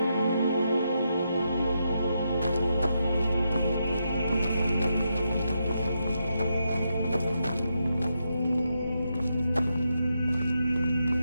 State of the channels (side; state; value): both; inverted; correlation -0.83